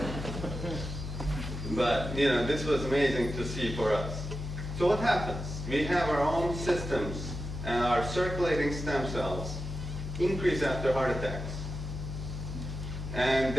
But you know, this was amazing to see for us. So what happens? We have our own systems, and our circulating stem cells increase after heart attacks. And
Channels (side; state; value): left; noise; hum, 6 dB below the sound